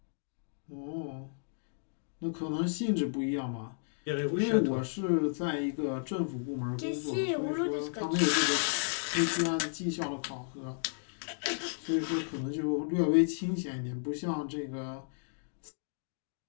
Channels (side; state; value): right; silent; digital silence